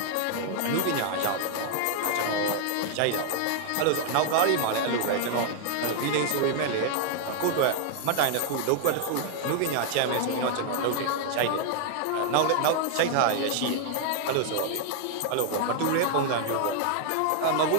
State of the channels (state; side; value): different; both; correlation 0.00